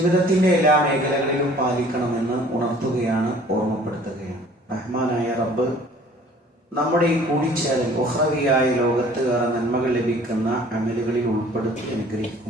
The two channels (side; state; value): both; normal; correlation 0.52